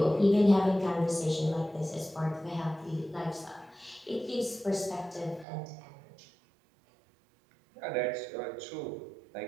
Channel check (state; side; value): drops out; left; at 5.5 s